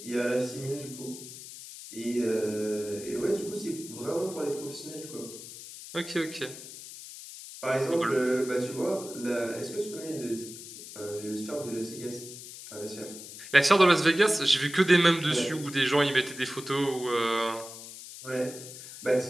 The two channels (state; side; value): noise; left; hiss, 13 dB below the sound